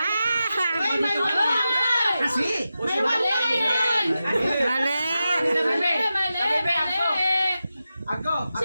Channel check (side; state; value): both; inverted; correlation -0.91